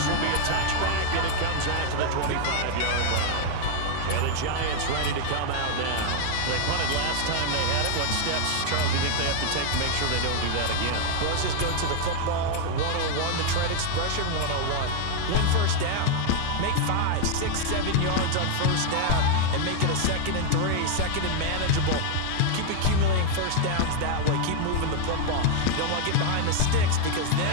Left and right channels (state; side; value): different; both; correlation 0.00